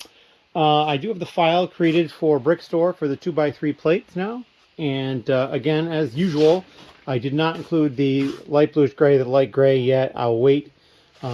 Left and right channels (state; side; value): identical; both; correlation 1.00